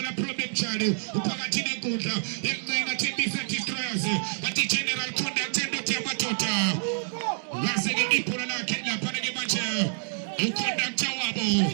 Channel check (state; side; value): silent; left; digital silence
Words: problem child uphakathi nekudla yencenga Thembisa T-Stress bathi general conduct endoti yamatota waseke iphola lakhe lapha ke manje uconductor wabo